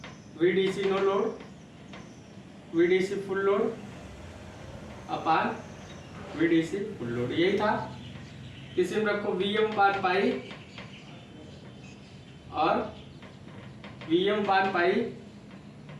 VDC no load, VDC full load upon VDC full load, यही था। इसी में रखो वी एम पान पाई और V M upon pi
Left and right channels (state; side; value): identical; both; correlation 1.00